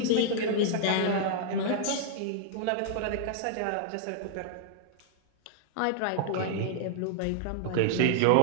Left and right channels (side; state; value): both; different; correlation -0.01